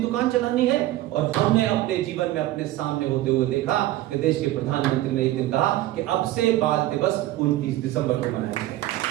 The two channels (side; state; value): left; quieter; 15.5 dB